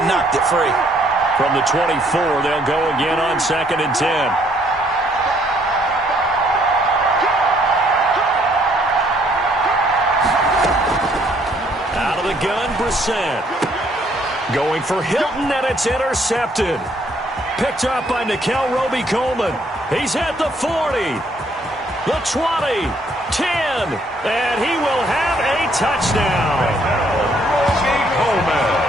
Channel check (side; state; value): both; normal; correlation 0.66